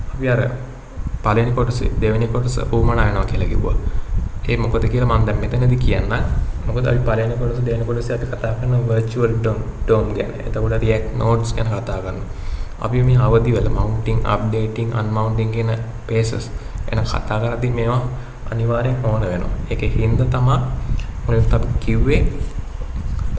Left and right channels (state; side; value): identical; both; correlation 1.00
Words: අපි අර පළවෙනි කොටසේ දෙවෙනි කොටස උවමනා වෙනවා කියලා කිව්වා. ඒ මොකද කියලා මම දැන් මෙතනදී කියන්න. මොකද අපි පළවෙනි කොටස දෙවෙනි කොටසේ අපි කතා කරන virtual DOM ගැන. එතකොට React nodes ගැන කතා කරනවා. අපි මේ අවදි වල mounting, updating, unmounting කියන phases ගැන කතා කරද්දී මේවා අනිවාර්යෙන් ඕන වෙනවා. ඒකේ හින්දා තමයි මොකද අපි කිව්වේ